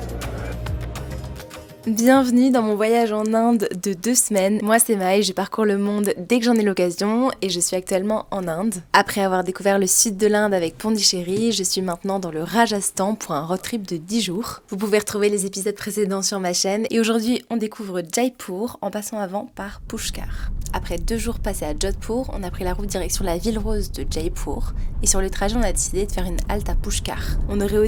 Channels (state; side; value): identical; both; correlation 1.00